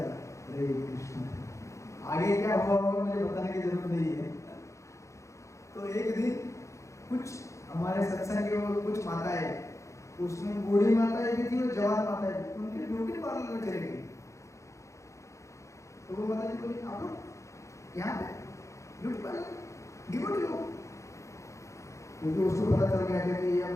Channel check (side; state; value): right; late; 0.15 ms